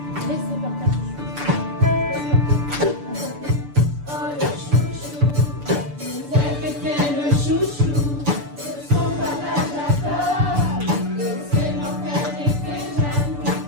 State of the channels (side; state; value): left; late; 6.9 ms